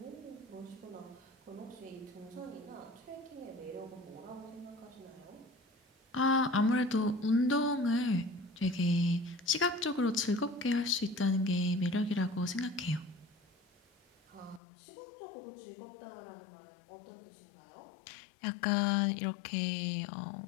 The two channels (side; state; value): right; drops out; at 14.6 s